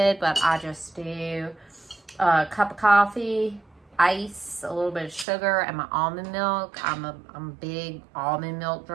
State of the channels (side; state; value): left; drops out; at 5.2 s